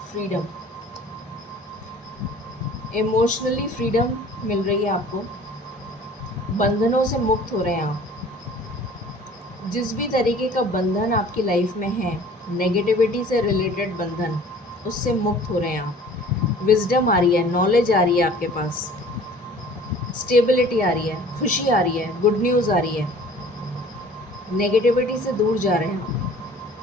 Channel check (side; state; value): both; normal; correlation 0.48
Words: freedom, emotionally freedom मिल रही है आपको। बंधनों से मुक्त हो रहे हैं आप। जिस भी तरीके का बंधन आपकी लाइफ में है, नेगेटिविटी से रिलेटेड बंधन, उससे मुक्त हो रहे हैं आप। विजडम आ रही है, नॉलेज आ रही है आपके पास, स्टेबिलिटी आ रही है, खुशी आ रही है, गुड न्यूज़ आ रही है। नेगेटिविटी से दूर जा रहे हैं।